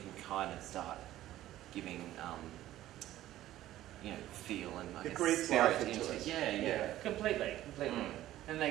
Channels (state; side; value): quieter; left; 14.1 dB